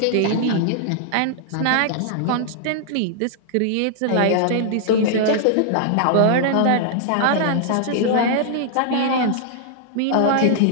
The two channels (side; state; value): both; different; correlation -0.01